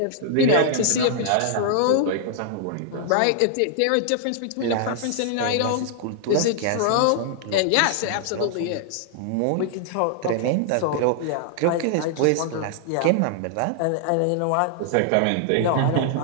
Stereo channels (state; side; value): different; both; correlation -0.01